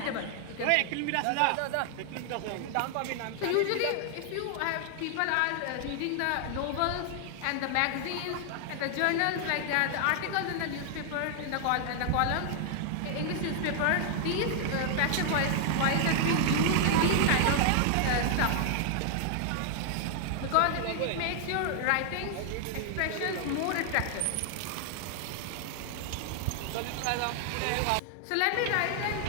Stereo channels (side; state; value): both; different; correlation 0.00